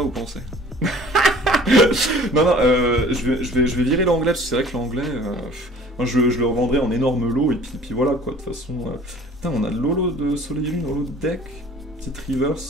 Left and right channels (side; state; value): both; normal; correlation 0.48